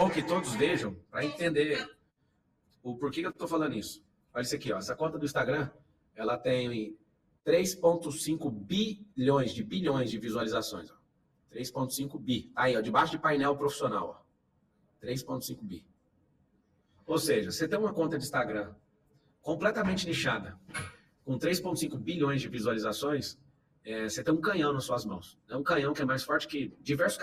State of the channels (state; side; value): identical; both; correlation 1.00